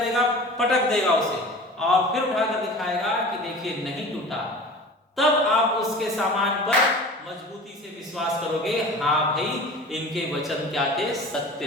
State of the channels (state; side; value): normal; both; correlation 0.38